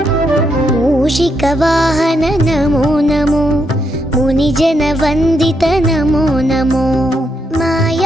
मूषिकवाहन नमो नमो मुनिजन वन्दित नमो नमो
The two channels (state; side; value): normal; both; correlation 0.79